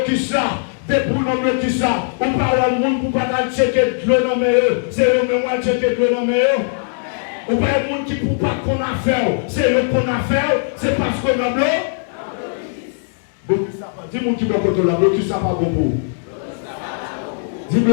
ça, de pour non bloquer ça. On parle de monde pour pas checker le nom, c'est eux même checker le nom. Ou pas un monde qui ne peut pas qu'on a fait, c'est le qu'on a fait, c'est parce qu'on a bleu. Dis mon qui va côté là, blocus ça pas bon pour vous. Dis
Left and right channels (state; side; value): silent; right; digital silence